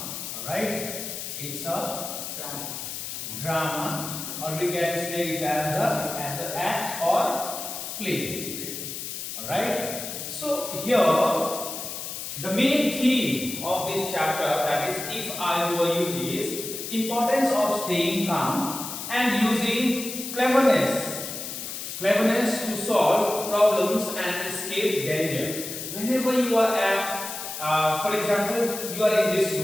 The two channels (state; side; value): noise; left; hiss, 7 dB below the sound